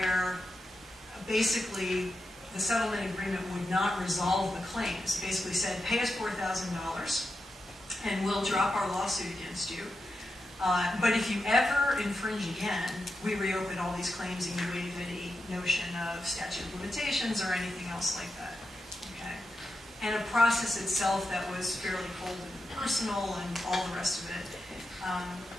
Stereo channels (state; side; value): normal; both; correlation 0.88